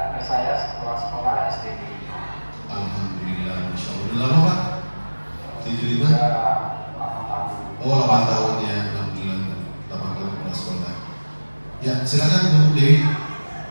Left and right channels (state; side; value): inverted; both; correlation -1.00